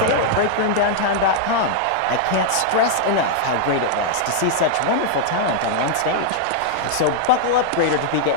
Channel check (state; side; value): different; both; correlation -0.01